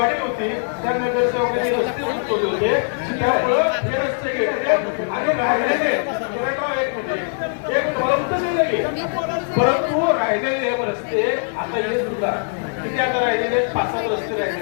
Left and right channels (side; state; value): right; silent; digital silence